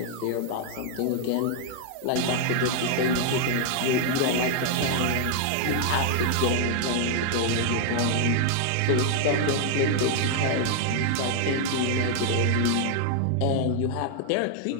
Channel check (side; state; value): both; different; correlation 0.00